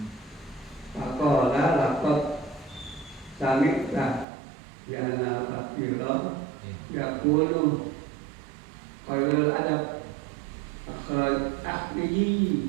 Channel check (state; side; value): drops out; left; at 4.2 s